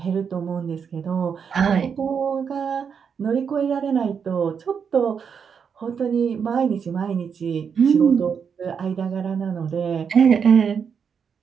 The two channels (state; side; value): quieter; left; 6.7 dB